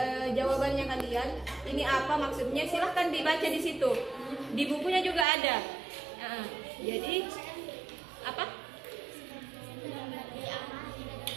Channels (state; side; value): drops out; left; at 5.2 s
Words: jawabannya kalian, ini apa maksudnya? Silahkan dibaca di situ. Di bukunya juga ada. Nah, jadi apa?